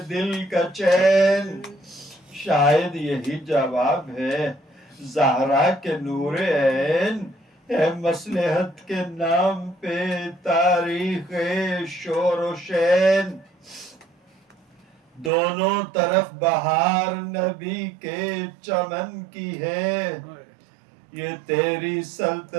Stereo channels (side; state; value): left; drops out; at 15.3 s